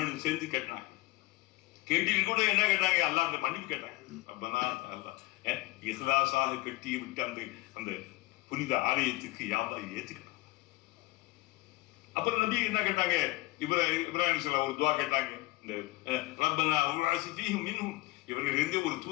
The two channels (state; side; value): quieter; right; 21.3 dB